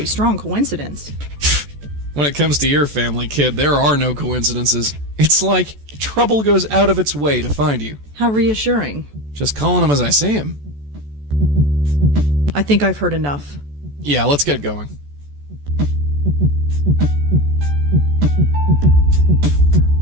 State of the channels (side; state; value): left; late; 14 ms